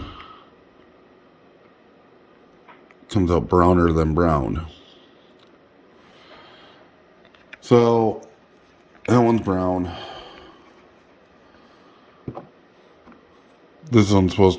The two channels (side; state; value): both; identical; correlation 1.00